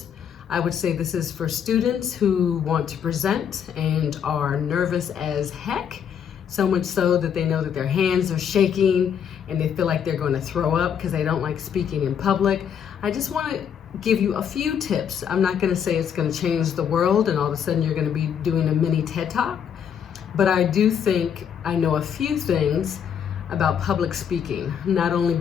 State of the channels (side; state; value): right; quieter; 8.1 dB